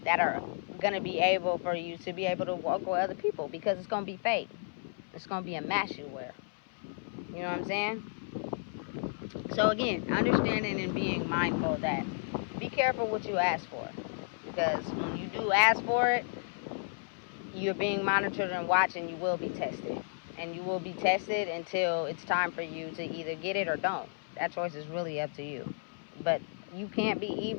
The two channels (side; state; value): right; silent; 56 dB below the other